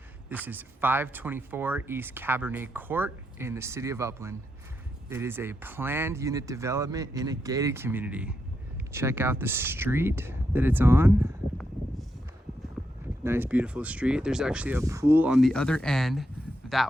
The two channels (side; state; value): both; normal; correlation 0.83